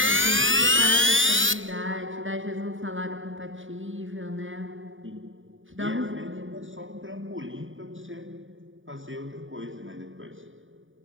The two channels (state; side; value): late; left; 0.57 ms